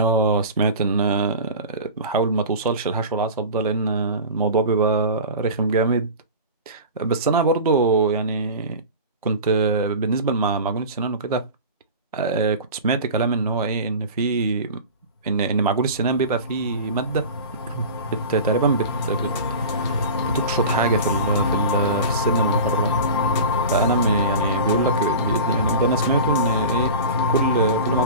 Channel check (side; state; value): both; inverted; correlation -0.34